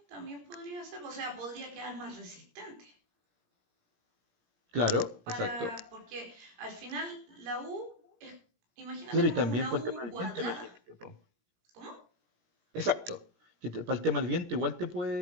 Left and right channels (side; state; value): left; late; 17 ms